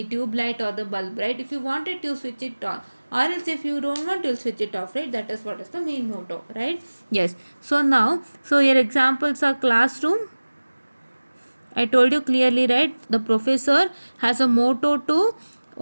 tube light or the bulb, right? If you want it, you switch it on, or else if you don't want, you'll switch it off, right? That is what is the main motto, right? Yes. So now, so your examples are classroom. I told you clearly, right? The professor has a motto to,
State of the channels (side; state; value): both; inverted; correlation -1.00